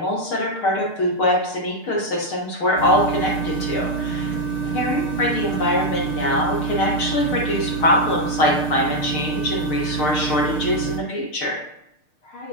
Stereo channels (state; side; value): late; right; 6.6 ms